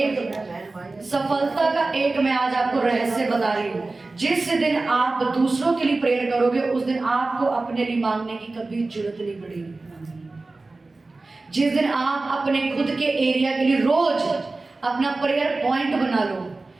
सफलता का एक मैं आज आपको रहस्य बता रही हूँ, जिस दिन आप दूसरों के लिए प्रेयर करोगे उस दिन आपको अपने लिए मांगने की कभी जरूरत नहीं पड़ेगी। जिस दिन आप अपने खुद के एरिया के लिए रोज अपना प्रेयर पॉइंट बना लो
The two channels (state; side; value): quieter; left; 3.4 dB